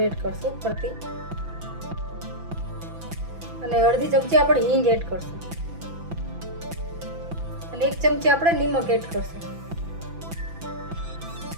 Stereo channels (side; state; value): left; late; 6.0 ms